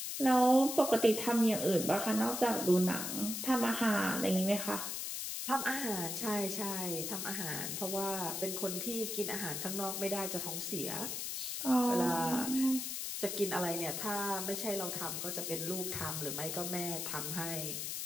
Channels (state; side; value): noise; left; hiss, 3 dB below the sound